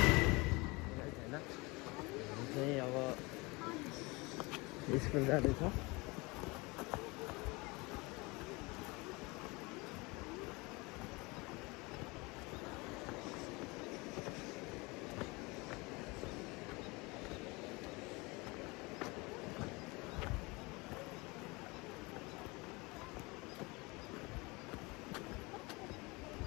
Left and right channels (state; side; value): quieter; right; 25.3 dB